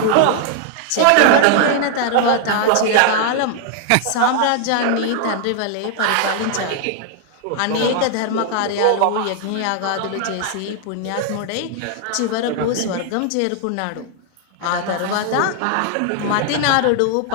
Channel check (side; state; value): both; different; correlation 0.00